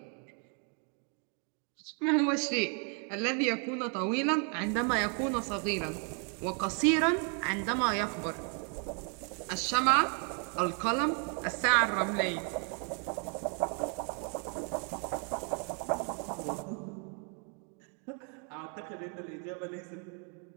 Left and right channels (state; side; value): quieter; left; 39.7 dB